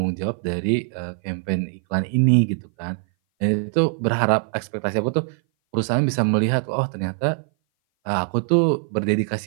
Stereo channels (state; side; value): silent; left; 58 dB below the other